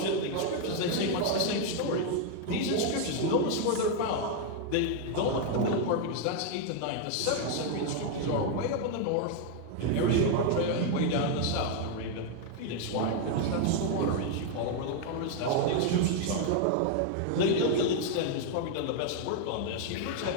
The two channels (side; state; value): both; different; correlation 0.00